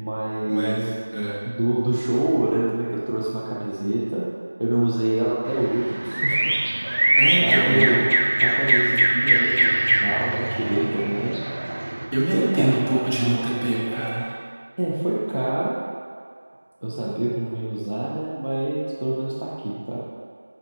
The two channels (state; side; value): inverted; both; correlation -1.00